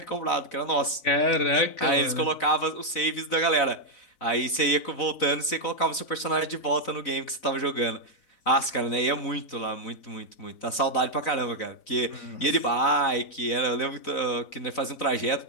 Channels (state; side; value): late; right; 4.0 ms